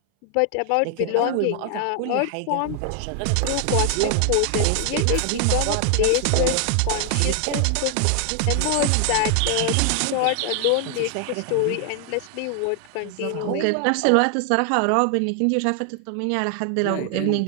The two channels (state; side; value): different; both; correlation 0.00